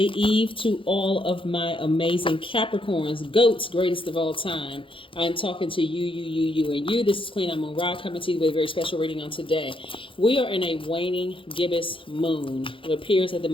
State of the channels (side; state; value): right; late; 0.25 ms